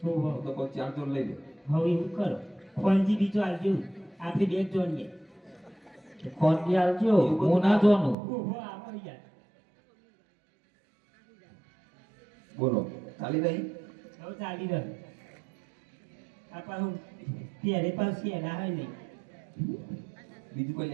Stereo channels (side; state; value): left; drops out; at 8.2 s